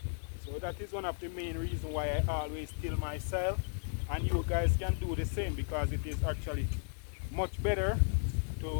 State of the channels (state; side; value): silent; right; digital silence